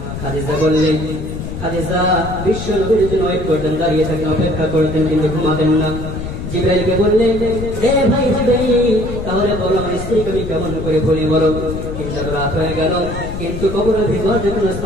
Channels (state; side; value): noise; left; rumble, 7 dB below the sound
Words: খাদিজা বললেন, খাদিজা বিশ্ব নবীর জন্য ওয়েট করতেন, দাঁড়িয়ে থাকেন, অপেক্ষা করতেন, কিন্তু ঘুমাতেন না। জিবরাইলকে বললেন, এ ভাই জিবরাইল, তাহলে বলো আমার স্ত্রীকে আমি কেমন করে ভুলি বলো। কিন্তু রাত হয়ে গেল, কিন্তু কবরের ভিতর যে কোনো